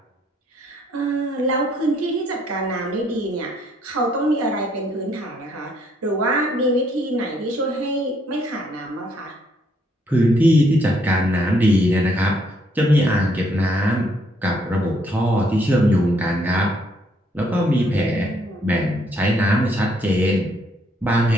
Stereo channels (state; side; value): normal; both; correlation 0.69